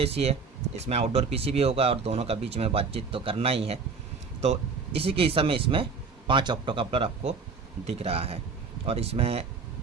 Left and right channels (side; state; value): left; quieter; 4.9 dB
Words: है, इसमें आउटडोर पीसी भी होगा और दोनों का बीच में बातचीत तो करना ही है। तो इसी के हिसाब में इसमें 5 ऑप्टोकपलर आपको दिख रहा है और इसमें